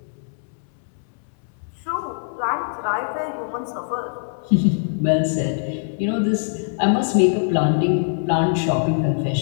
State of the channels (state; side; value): silent; right; 64 dB below the other